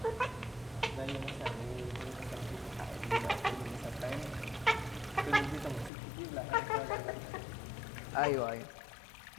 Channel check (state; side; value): drops out; right; at 5.9 s